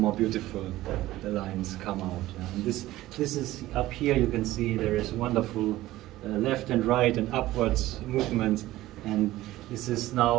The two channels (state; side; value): quieter; left; 16.2 dB